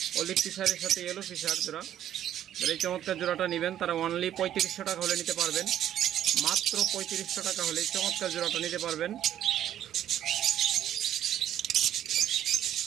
অলিভ ফিশারের সাথে ইয়েলো ফিশার জোড়া। যারা এই চমৎকার জোড়াটা নেবেন তারা অনলি 3500 টাকা হলে নিতে পারবেন, মাত্র 3500 টাকা হলে এই চমৎকার জোড়াটা নিতে পারবেন।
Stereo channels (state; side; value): quieter; left; 11.2 dB